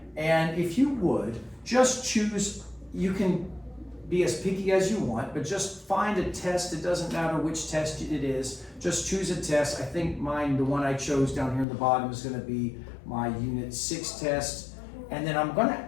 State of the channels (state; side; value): drops out; right; at 11.7 s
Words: and if you would, just choose, you can be as picky as you want, but just find a test. It doesn't matter which test it is. Just choose a test. I think mine, the one I chose down here in the bottom, is going to be my Unit 6 test. And then I'm going to